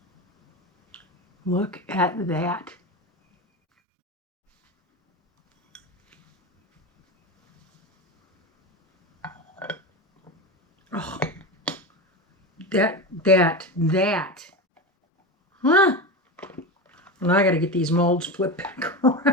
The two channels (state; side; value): normal; both; correlation 0.22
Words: Look at that. Oh, that. Huh? Well, now I got to get these molds flipped back